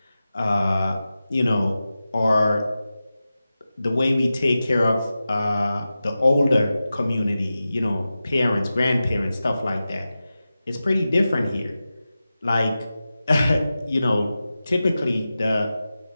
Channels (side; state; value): both; inverted; correlation -0.94